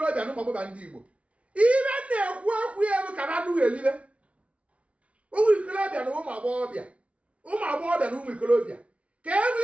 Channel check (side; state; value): left; late; 0.063 ms